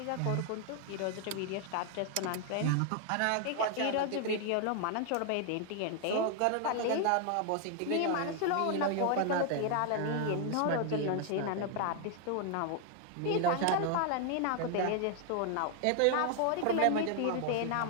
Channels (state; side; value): different; both; correlation 0.00